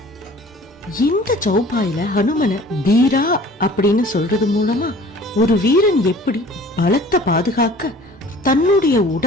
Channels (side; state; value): both; normal; correlation 0.48